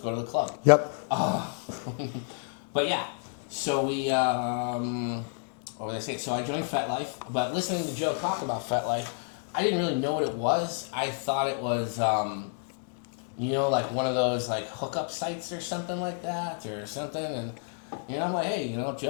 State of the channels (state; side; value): silent; right; 58 dB below the other